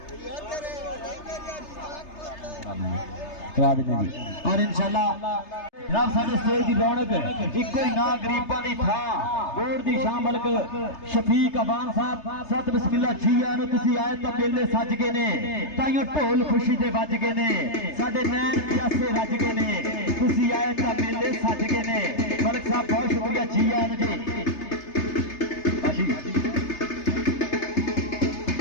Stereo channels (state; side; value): late; right; 3.3 ms